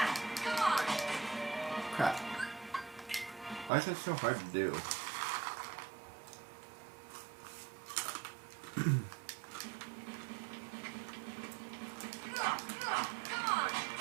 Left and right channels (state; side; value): drops out; left; at 3.7 s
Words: Crap. Why is that so hard to do?